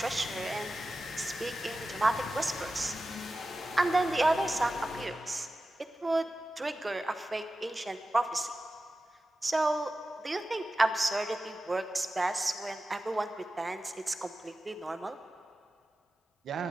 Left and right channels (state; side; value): normal; both; correlation 0.94